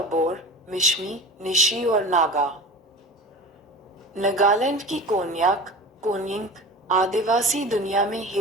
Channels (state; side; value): normal; both; correlation 0.34